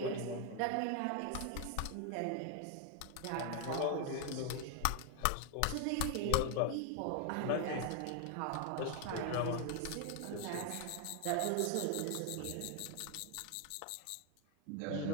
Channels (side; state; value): both; different; correlation 0.00